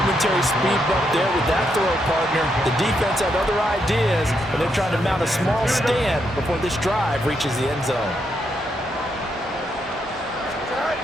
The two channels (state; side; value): normal; both; correlation 0.79